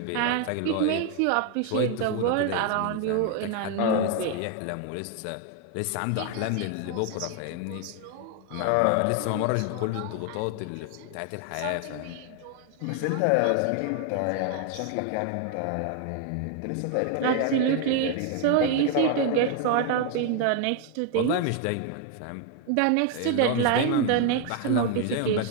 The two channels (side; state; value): both; different; correlation 0.01